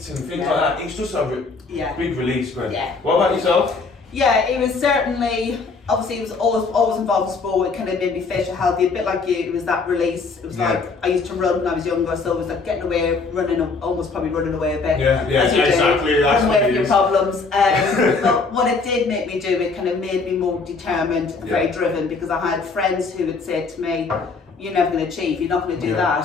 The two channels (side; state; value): right; quieter; 4.3 dB